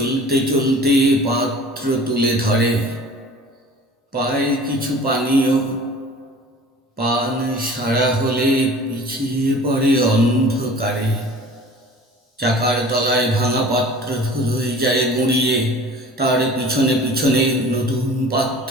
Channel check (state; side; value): normal; both; correlation 0.44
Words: চলতে পাত্র তুলে ধরে। পায় কিছু পানীয়, পান সারা হলে পিছিয়ে পড়ে অন্ধকারে। চাকার তলায় ভাঙা পাত্র ধুলোয় যায় গুঁড়িয়ে, তার পিছনে পিছনে নতুন